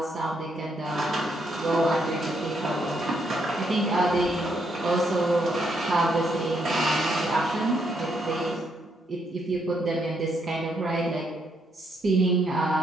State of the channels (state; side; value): normal; both; correlation 0.75